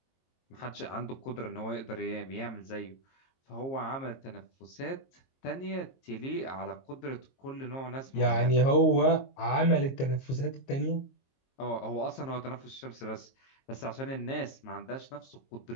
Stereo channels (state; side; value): late; right; 22 ms